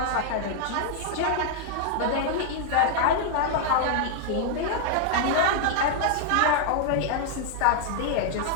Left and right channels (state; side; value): different; both; correlation -0.01